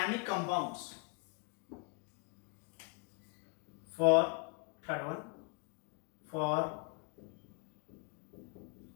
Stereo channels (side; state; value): right; quieter; 37.1 dB